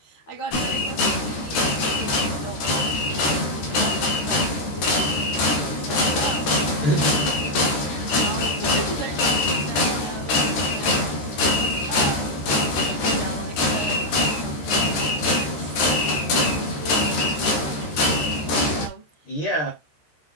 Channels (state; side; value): late; right; 14 ms